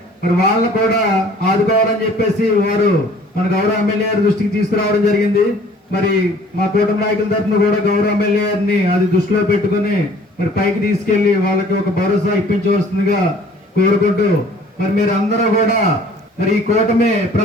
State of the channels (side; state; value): both; normal; correlation 0.53